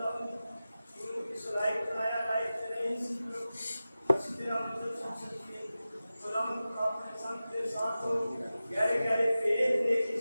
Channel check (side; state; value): both; inverted; correlation -0.95